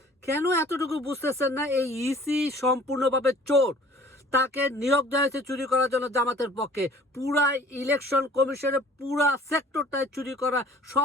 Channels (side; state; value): both; normal; correlation 0.51